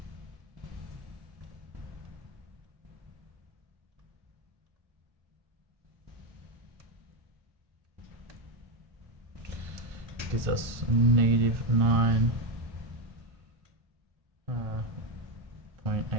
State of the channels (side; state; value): left; late; 1.6 ms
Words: Gives us negative